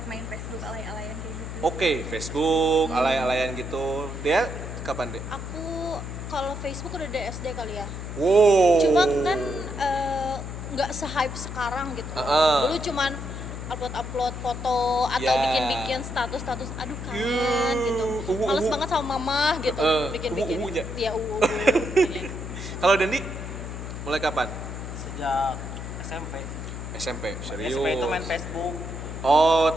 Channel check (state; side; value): noise; left; hum, 7 dB below the sound